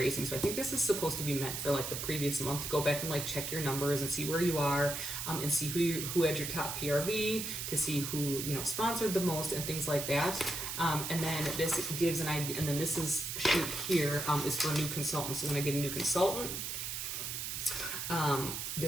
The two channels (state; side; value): noise; right; hiss, 4 dB below the sound